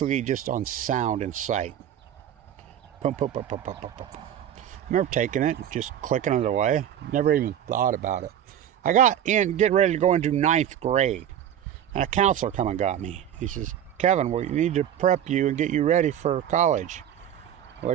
just on sound and sight. Pum, pum, pum, pum, pum, pum, pum. I remember taking it, just clicking it away. Never even thought about it. I got in, getting ready to go into 9th grade. And a counselor come and got me. He says, Kevin, we need to prep you and get you ready for college. What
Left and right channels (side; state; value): left; quieter; 10.3 dB